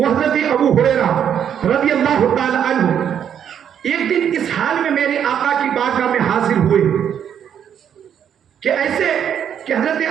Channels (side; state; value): left; quieter; 8.8 dB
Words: حضرت ابو ہریرہ رضی اللہ تعالی عنہ ایک دن اس حال میں میرے آقا کی بارگاہ میں حاضر ہوئے کہ ایسے کہ حضرت